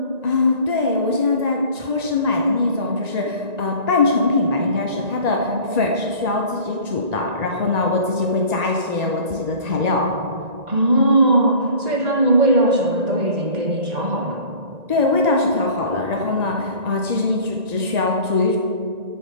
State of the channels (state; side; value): late; left; 1.9 ms